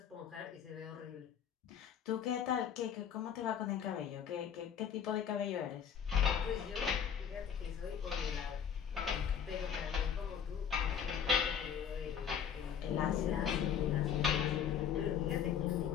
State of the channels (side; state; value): right; quieter; 8.1 dB